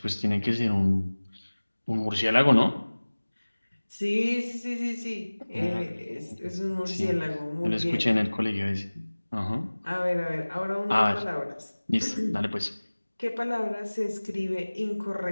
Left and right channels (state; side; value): inverted; both; correlation -1.00